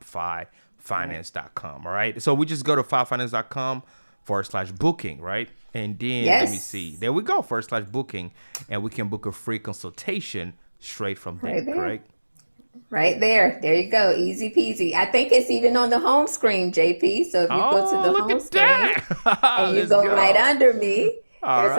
All right. So we just go to fivefinance.com/booking, right? And then let me see. There we go, /booking. And we can book a free consultation straight from there, correct? Right there. There you go. Easy peasy. I think it's even on the home screen, JP. So if you go to the home screen and you go right under me, there's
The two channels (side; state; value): both; inverted; correlation -1.00